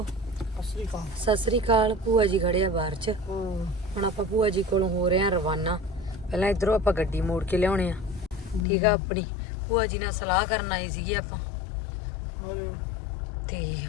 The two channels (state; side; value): drops out; right; at 8.7 s